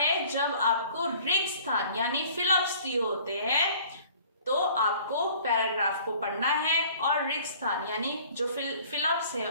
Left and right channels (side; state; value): both; inverted; correlation -0.51